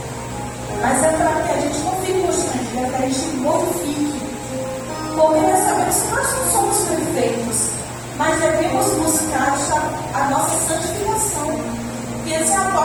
Mas é para que a gente não fique constrangido, é para que a gente glorifique. Porque nós sabemos que nós não somos perfeitos, mas devemos buscar a nossa santificação. E essa é a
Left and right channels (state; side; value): identical; both; correlation 1.00